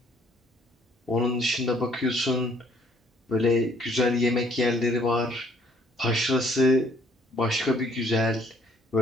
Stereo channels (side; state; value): both; normal; correlation 0.62